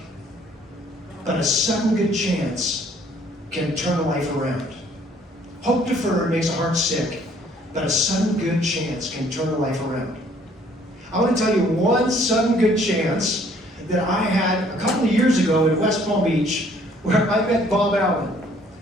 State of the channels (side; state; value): both; normal; correlation 0.60